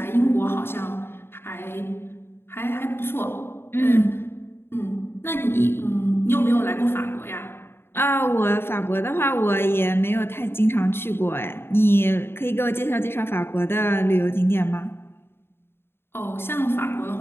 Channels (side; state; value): right; late; 0.11 ms